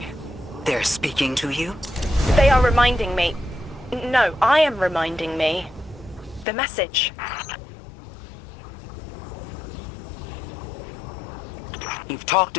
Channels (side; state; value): right; drops out; at 6.5 s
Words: They're speaking to you? They are reminding me... No, I am reminding me. The message. You've talked